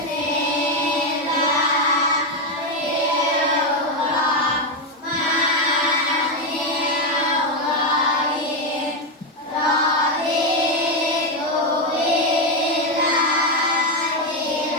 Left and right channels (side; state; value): both; normal; correlation 0.07